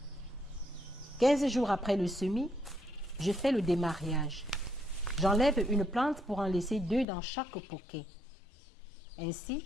« 15 jours après le semis, je fais le démariage. J'enlève une plante pour en laisser 2 dans chaque poquet. Ainsi,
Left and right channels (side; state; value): right; drops out; at 7.1 s